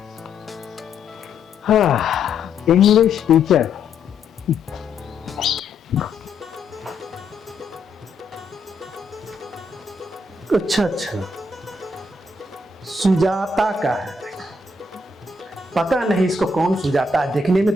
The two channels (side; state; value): right; quieter; 3.2 dB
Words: हाँ इंग्लिश टीचर। अच्छा अच्छा, सुजाता का है। पता नहीं इसको कौन सुजाता है, देखने में